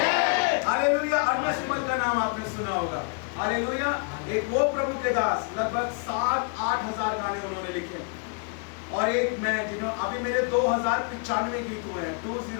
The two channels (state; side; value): quieter; right; 37.5 dB